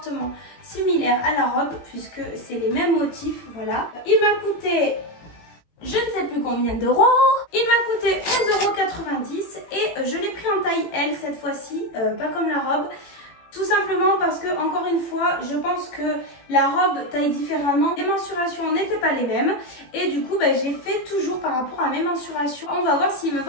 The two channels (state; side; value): late; right; 18 ms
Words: similaire à la robe puisque c'est les mêmes motifs. Voilà, il m'a coûté je ne sais plus combien d'euros. Il m'a coûté 11,90 € et je l'ai pris en taille L cette fois-ci, pas comme la robe. Tout simplement parce que, encore une fois, je pense que la robe taille différemment. Les mensurations n'étaient pas les mêmes. Et du coup, j'ai fait toujours par rapport à mes mensurations. On va voir s'il me